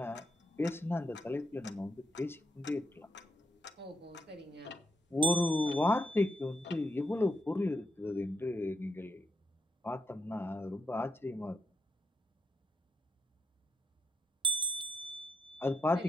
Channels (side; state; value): both; normal; correlation 0.80